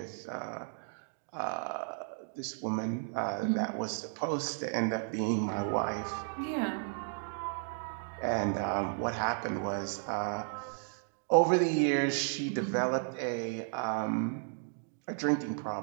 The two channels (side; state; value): left; silent; 55 dB below the other